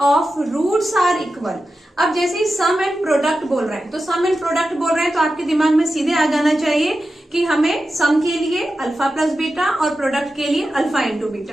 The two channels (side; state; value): both; normal; correlation 0.92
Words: roots are equal. अब जैसे ही सम and product बोल रहे हैं, तो सम and product बोल रहे हैं तो आपके दिमाग में सीधे आ जाना चाहिए कि हमें सम के लिए अल्फा प्लस बीटा और प्रोडक्ट के लिए अल्फा इंटू